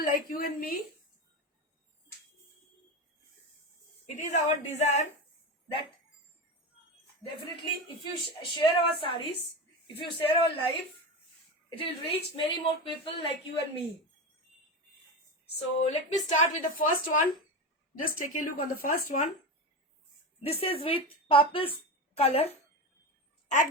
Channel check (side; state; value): both; normal; correlation 0.21